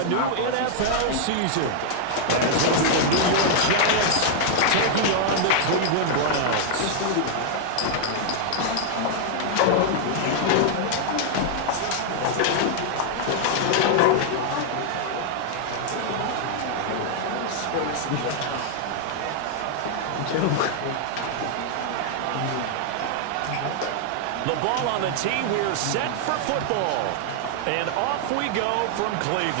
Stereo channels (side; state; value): both; different; correlation -0.01